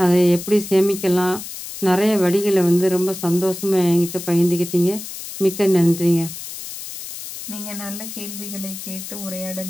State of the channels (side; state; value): left; noise; hiss, 10 dB below the sound